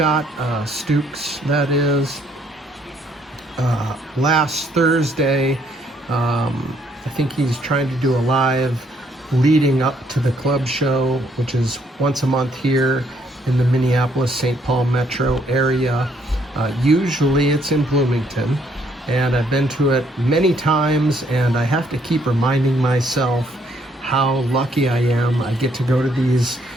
Stukes, that is, last Thursday. I think he's trying to do a live leading up to the club show, which is once a month here in the Minneapolis-St. Paul metro area. Usually it's in Bloomington, and I've been to it many times, and I have to keep reminding myself how lucky I am. I get to go to these,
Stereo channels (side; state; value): both; normal; correlation 0.69